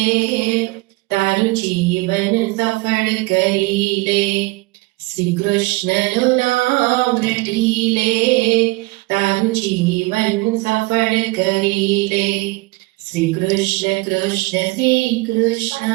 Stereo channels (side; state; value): left; quieter; 23.1 dB